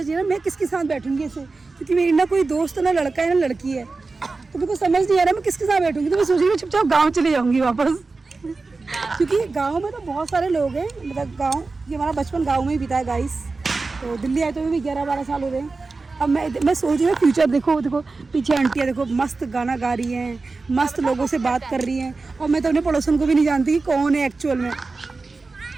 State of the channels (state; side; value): quieter; left; 3.9 dB